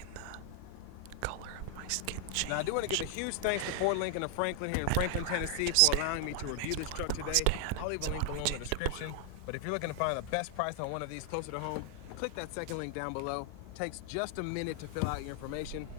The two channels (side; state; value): both; different; correlation 0.00